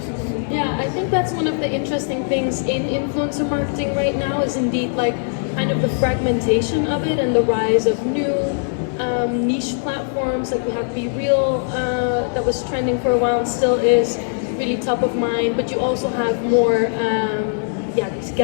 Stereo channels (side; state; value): right; silent; digital silence